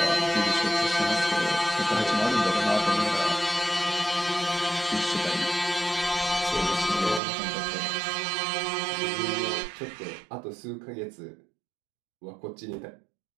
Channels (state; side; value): drops out; left; at 7.2 s